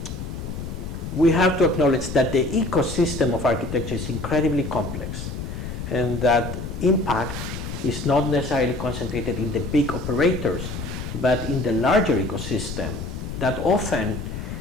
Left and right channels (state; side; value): noise; left; rumble, 7 dB below the sound